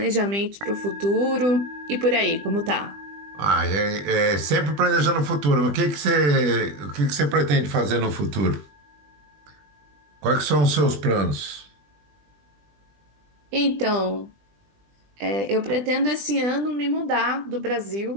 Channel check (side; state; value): left; late; 20 ms